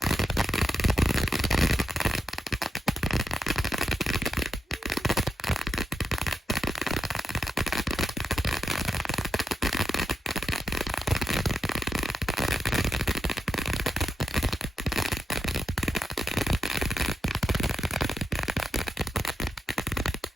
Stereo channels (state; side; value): normal; both; correlation 0.87